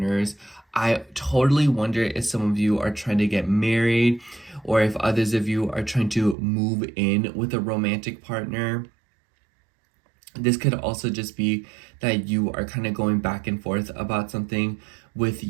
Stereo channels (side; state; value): left; drops out; at 6.4 s